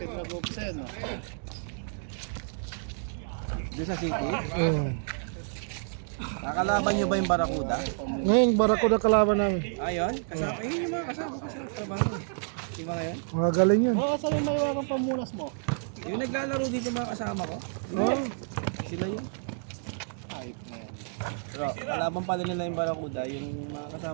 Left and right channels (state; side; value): silent; left; digital silence